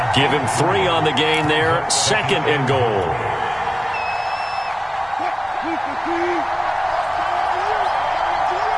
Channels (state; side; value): identical; both; correlation 1.00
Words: Give him 3 on the gain there, 2nd and goal.